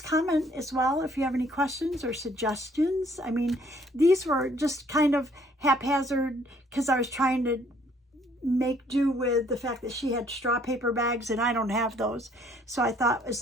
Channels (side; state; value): both; normal; correlation 0.63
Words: comment as well if you have any questions or suggestions. I mean, these were just kind of haphazard because I was trying to make do with the fact that she had straw paper bags and I don't have those. So I thought as